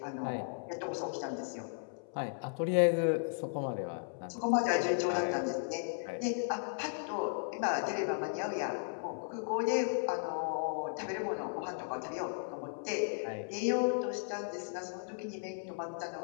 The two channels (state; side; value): silent; right; 54 dB below the other